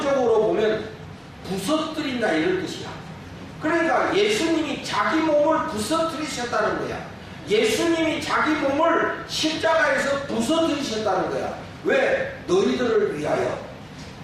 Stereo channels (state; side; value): identical; both; correlation 1.00